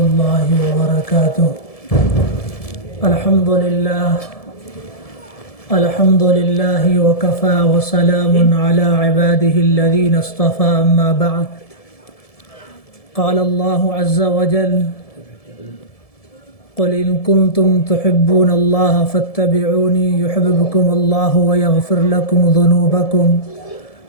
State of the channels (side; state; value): right; late; 1.7 ms